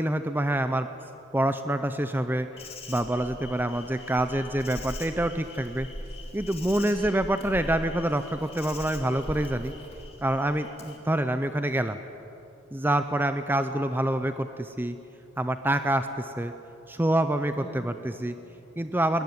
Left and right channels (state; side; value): normal; both; correlation 0.82